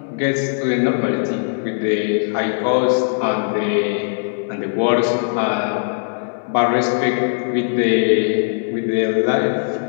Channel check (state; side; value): silent; right; digital silence